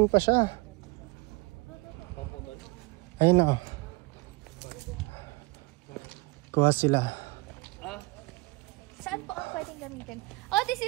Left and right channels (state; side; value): quieter; left; 24.8 dB